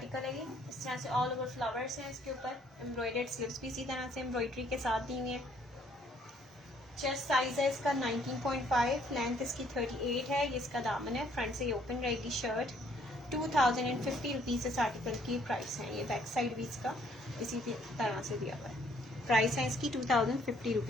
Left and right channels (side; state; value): both; normal; correlation 0.65